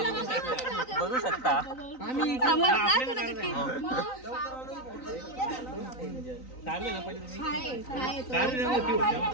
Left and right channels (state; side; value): late; right; 3.9 ms